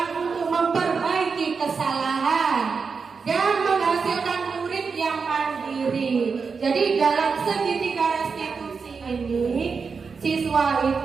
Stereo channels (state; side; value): quieter; left; 5.3 dB